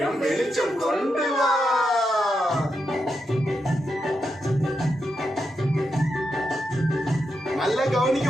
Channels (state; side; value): normal; both; correlation 0.85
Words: வெளிச்சம் கொண்டு வா. நல்லா கவனிக்க